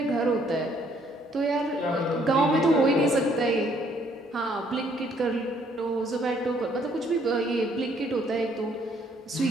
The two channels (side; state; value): both; normal; correlation 0.65